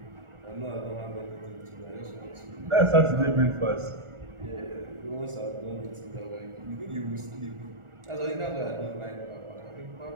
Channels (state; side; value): late; left; 1.4 ms